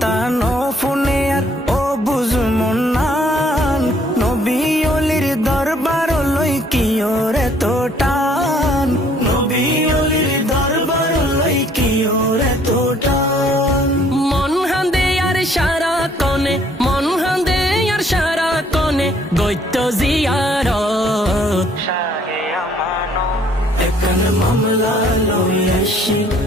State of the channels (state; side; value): normal; both; correlation 0.62